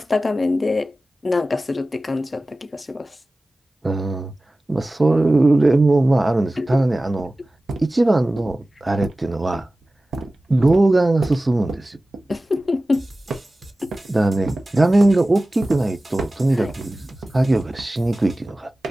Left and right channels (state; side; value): normal; both; correlation 0.96